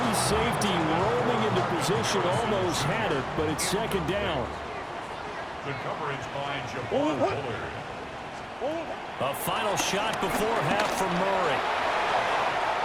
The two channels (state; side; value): identical; both; correlation 1.00